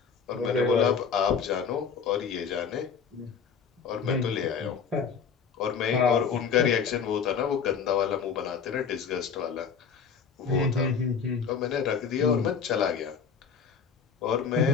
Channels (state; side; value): quieter; right; 6.4 dB